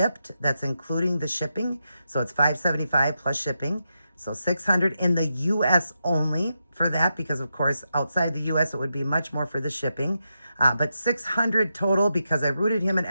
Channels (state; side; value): inverted; both; correlation -0.86